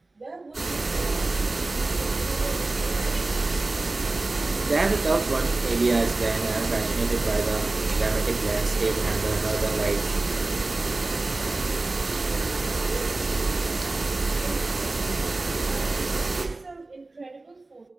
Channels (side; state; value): left; quieter; 3.2 dB